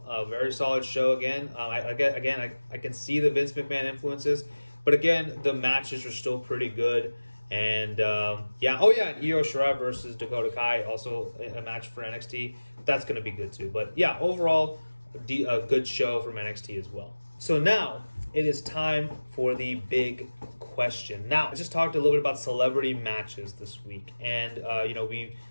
A very solid show again. I can see the Vince McMahon influences, but again, the matches are still pretty good. And and Io Shirai versus Dakota Kai, also a match for NXT. That's going to be good too. But yeah, overall, a good show from NXT as well. So now it is time for the big question. Now, I just talked a little bit about celebrity matches this week, and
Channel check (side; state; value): both; inverted; correlation -1.00